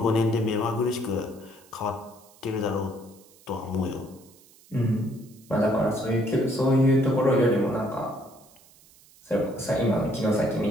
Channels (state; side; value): noise; right; hiss, 26 dB below the sound